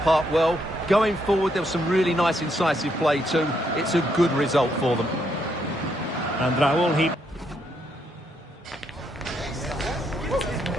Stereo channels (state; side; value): normal; both; correlation 0.76